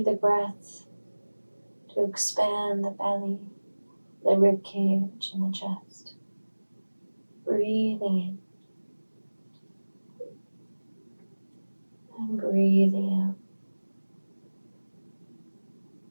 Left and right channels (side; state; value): both; inverted; correlation -1.00